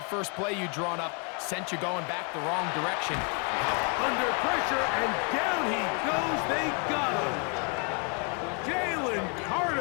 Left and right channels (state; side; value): quieter; right; 35.8 dB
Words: first play you drawn up sent you going back the wrong direction. Under pressure, and down he goes. They got him. Jalen